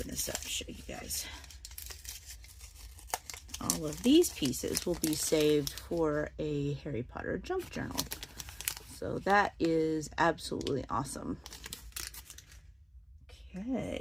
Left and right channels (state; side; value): identical; both; correlation 1.00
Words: this up and show you guys. All of these pieces will be saved for a Harry Potter junk journal. So that is absolutely awesome.